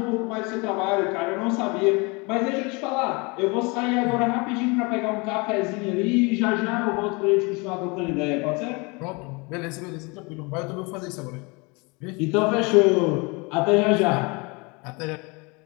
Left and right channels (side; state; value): right; quieter; 28.5 dB